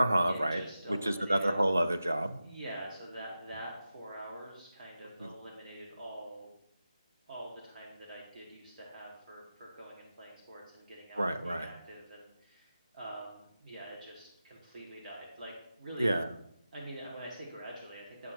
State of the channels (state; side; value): inverted; both; correlation -0.92